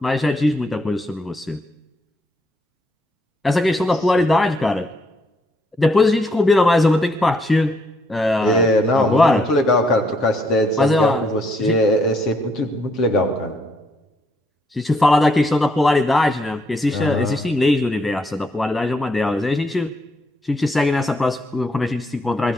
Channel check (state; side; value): normal; both; correlation 0.74